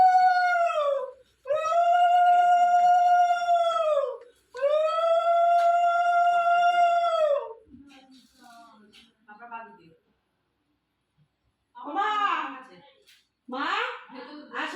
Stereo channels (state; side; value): identical; both; correlation 1.00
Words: আপনার বাদ দিয়ে। মা মা